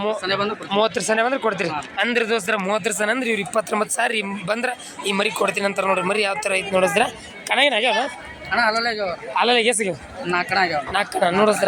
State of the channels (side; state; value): both; identical; correlation 1.00